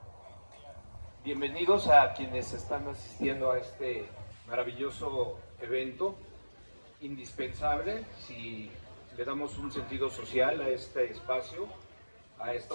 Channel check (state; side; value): inverted; both; correlation -1.00